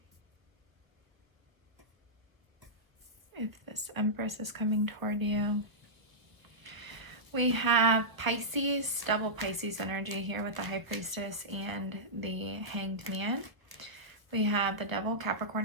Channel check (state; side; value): late; left; 1.1 ms